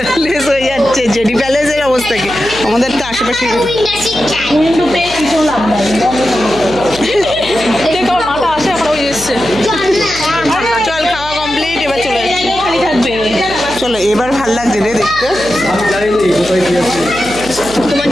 হয়ে যাচ্ছে জেডি প্যালেসের অবস্থা কি আমাদের তো আশেপাশে উইন্ডো পেয়ে কিছু লাভ নাই মাথা আসে এখন ওই এসছে চল খাওয়া কমপ্লিট এবার চলে যাচ্ছি খালি থাকবে চলো এবার ভাল লাগছে রে দেখতে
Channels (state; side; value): noise; right; hum, 14 dB below the sound